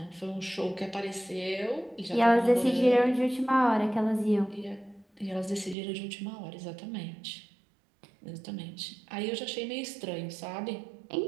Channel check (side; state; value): left; drops out; at 5.8 s